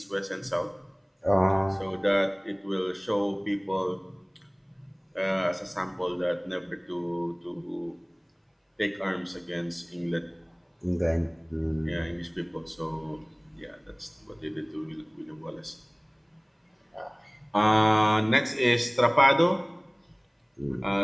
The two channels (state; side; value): identical; both; correlation 1.00